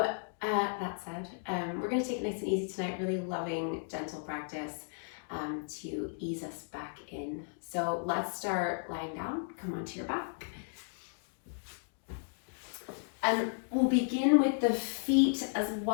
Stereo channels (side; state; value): right; silent; digital silence